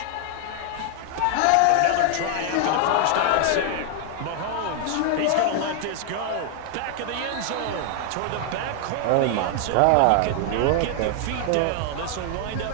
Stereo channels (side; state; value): both; different; correlation 0.00